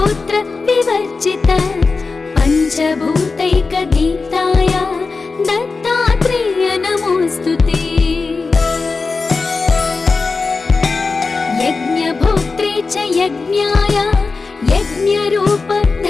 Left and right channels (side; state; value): right; quieter; 4.2 dB